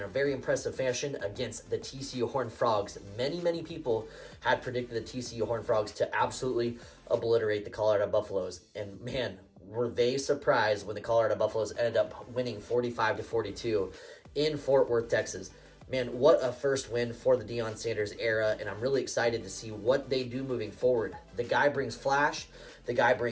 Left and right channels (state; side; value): identical; both; correlation 1.00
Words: very impressive fashion against the TCU Horned Frogs. Many people had predicted the TCU Horned Frogs to absolutely obliterate the Colorado Buffaloes, and man, were they surprised when the Colorado Buffaloes ended up winning 45-42 in Fort Worth, Texas. Man, what a first win for the Deion Sanders era, and I'm really excited to see what they do moving forward. The guy brings flash, the guy